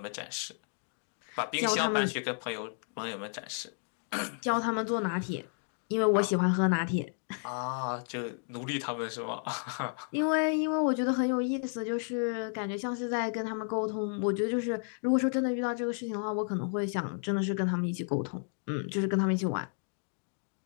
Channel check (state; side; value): silent; right; 56 dB below the other